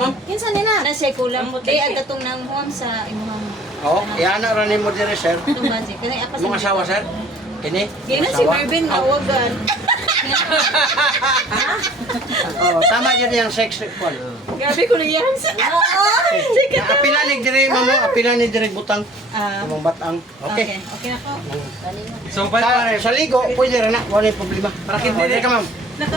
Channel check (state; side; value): normal; both; correlation 0.51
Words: Kinsa nila? Na siya kulang mo. Di ang katong nang huwam sa imong Oh, iyan na rin mo dire sir. itong magic. Kanang apas. Mong asawa sir. Kini? Di na si Mervin awagan. Oh, tama dyan yung sex call. Grabe ko nang yan sa. Sige. Apilanig dire mamo, apilanig dire butang. Ah, Imong batang. Okay. okay na ko. So, pa Sa ligo, pwede rin na. Wala yung problema. Para hindi Hindi ka ma'am.